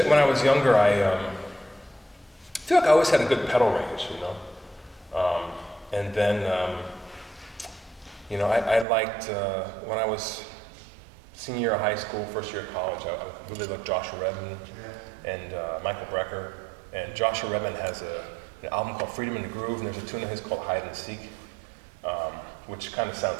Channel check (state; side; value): drops out; left; at 8.8 s